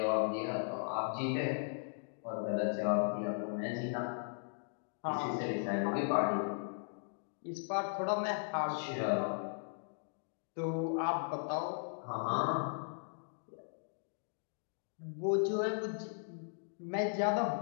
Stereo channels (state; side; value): silent; right; digital silence